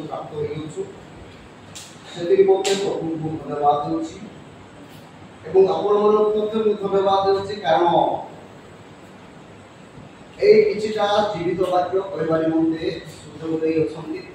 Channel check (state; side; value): identical; both; correlation 1.00